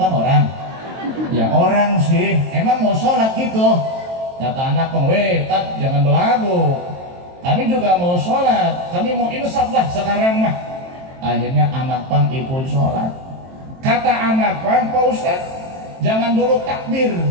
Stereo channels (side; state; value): left; late; 23 ms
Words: orang? Ya orang sih, emang mau sholat gitu. Kata anak pang, weh Tat jangan belagu, kami juga mau sholat, kami mau insaf lah sekarang mah. Akhirnya anak pang ikut sholat. Kata anak pang, Pak Ustaz jangan dulu takbir.